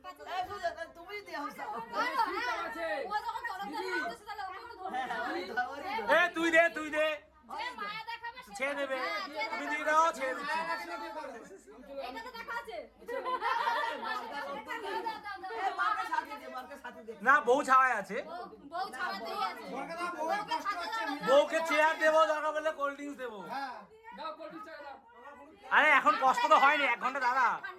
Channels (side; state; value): both; identical; correlation 1.00